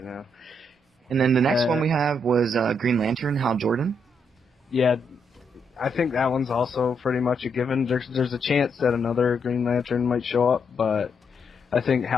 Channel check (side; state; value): both; normal; correlation 0.78